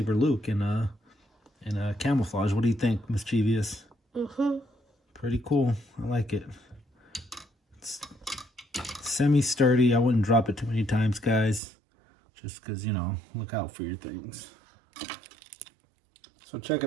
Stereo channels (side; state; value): left; drops out; at 11.6 s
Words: Luke in camouflage. What do you think, Mischievous? Pretty cool. I like it. It's semi-sturdy. I wouldn't drop it too many times, guys. Just because, you know, look out for your things. So check